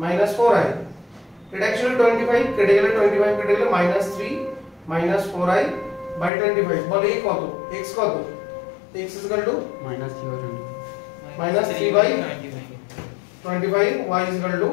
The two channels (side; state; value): right; drops out; at 6.3 s